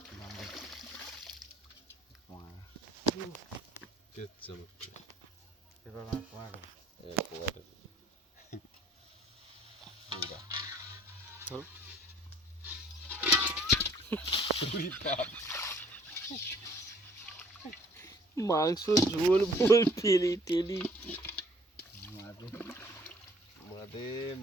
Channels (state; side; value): normal; both; correlation 0.57